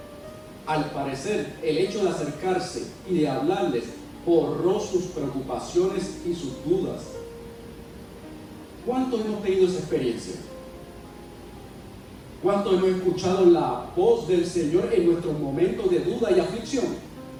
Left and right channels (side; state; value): both; identical; correlation 1.00